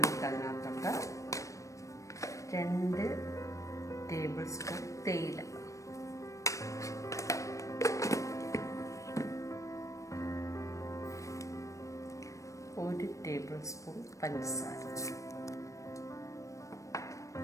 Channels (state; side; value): late; right; 0.15 ms